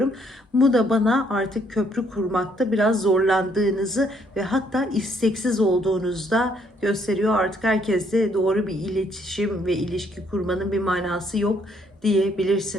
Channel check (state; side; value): normal; both; correlation 0.68